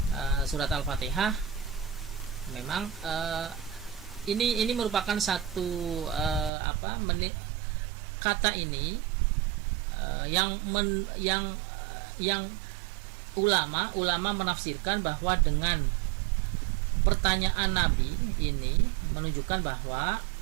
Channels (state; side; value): drops out; left; at 6.5 s